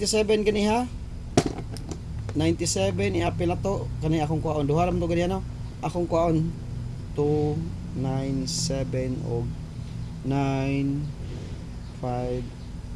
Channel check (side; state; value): both; identical; correlation 1.00